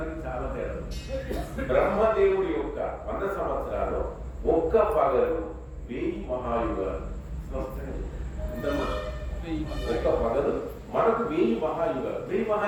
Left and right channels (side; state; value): both; identical; correlation 1.00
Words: చాలా తేడా. బ్రహ్మదేవుడి యొక్క 100 సంవత్సరాలు ఒక్క పగలు 1000 మహాయుగాలు. ఒక్క పగలు మనకు 1000 మహాయుగాలు. 1000